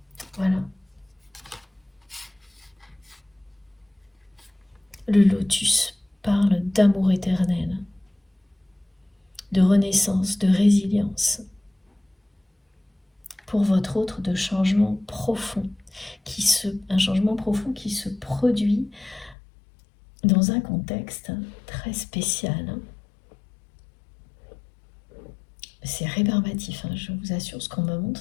Voilà. Le lotus parle d'amour éternel, de renaissance, de résilience. Pour votre autre, de changement profond, un changement profond qui se produit dans un contexte très spécial. C'est rébarbatif, hein, je vous assure, ce qu'on me montre,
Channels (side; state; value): right; drops out; at 19.4 s